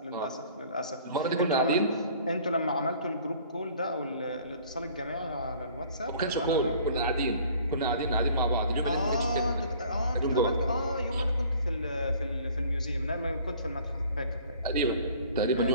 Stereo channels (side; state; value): both; inverted; correlation -0.52